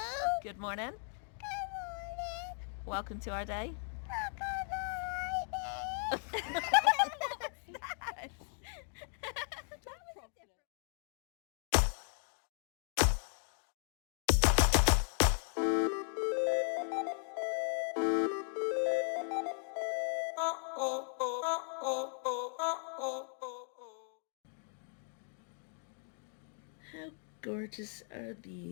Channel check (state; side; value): silent; right; 53 dB below the other